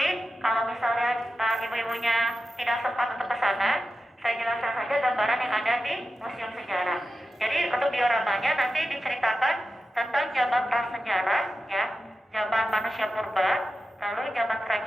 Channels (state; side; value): normal; both; correlation 0.92